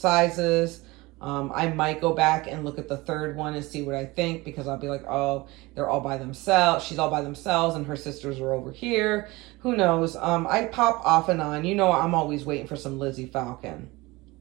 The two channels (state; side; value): quieter; left; 21.9 dB